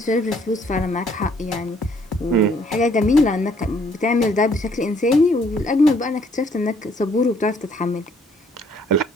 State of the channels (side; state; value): both; normal; correlation 0.64